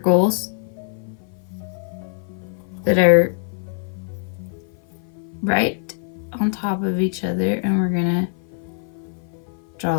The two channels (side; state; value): right; silent; 55 dB below the other